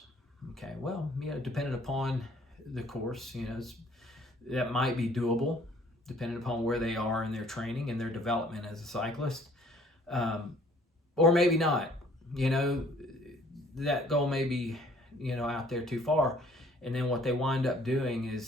Okay, well, depending upon the course, that might be doable, depending upon where they are in their training and their development as a cyclist, or maybe not. That goal may be, out there too far, and then what they wind up doing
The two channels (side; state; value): both; normal; correlation 0.58